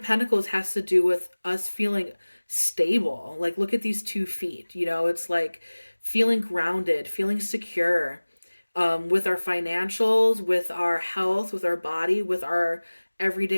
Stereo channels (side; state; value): both; inverted; correlation -1.00